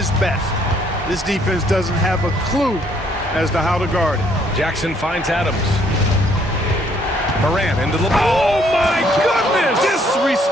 best. This defense doesn't have a clue as to how to guard it. Jackson finds Adams. Morant into the... Oh, my goodness!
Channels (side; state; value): both; normal; correlation 0.66